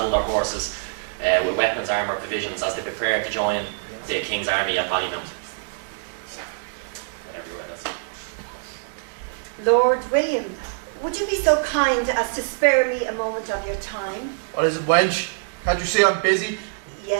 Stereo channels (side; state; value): left; silent; digital silence